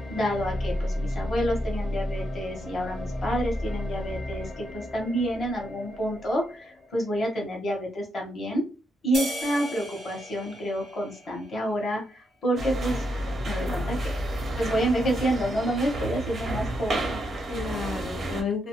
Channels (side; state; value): both; normal; correlation 0.81